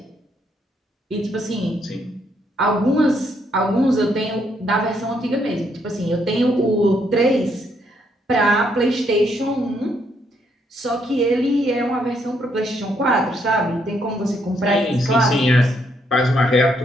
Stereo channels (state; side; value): normal; both; correlation 0.73